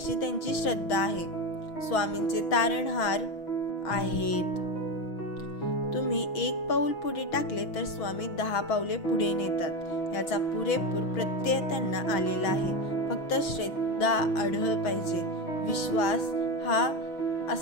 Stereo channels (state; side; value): late; right; 6.2 ms